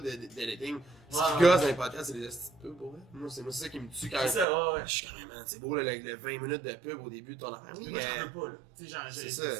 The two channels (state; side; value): drops out; left; at 4.5 s